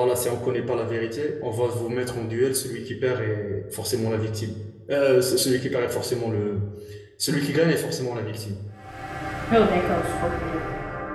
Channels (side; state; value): both; identical; correlation 1.00